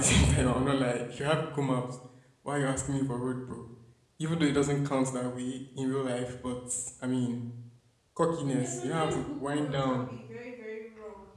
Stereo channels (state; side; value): identical; both; correlation 1.00